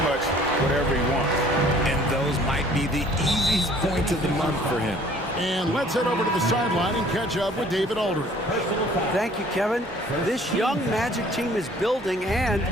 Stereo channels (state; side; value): normal; both; correlation 0.55